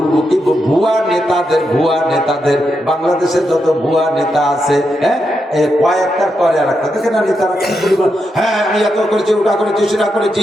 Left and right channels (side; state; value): both; normal; correlation 0.84